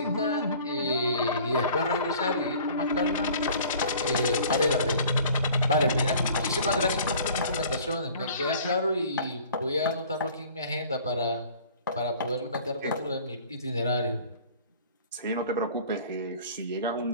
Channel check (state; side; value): inverted; both; correlation -0.49